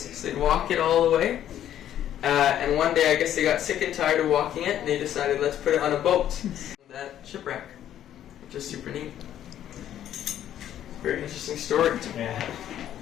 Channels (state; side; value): quieter; right; 11.1 dB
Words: they'd walk it all the way. And one day I guess they got sick and tired of walking it, and they decided let's put it on a boat. That shipwreck, which is super neat. Very interesting story. Yeah.